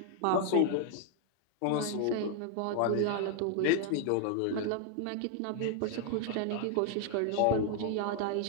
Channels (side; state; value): both; different; correlation 0.00